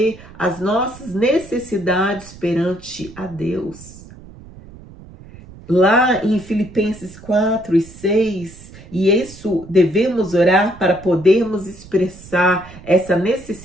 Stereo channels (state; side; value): noise; right; rumble, 19 dB below the sound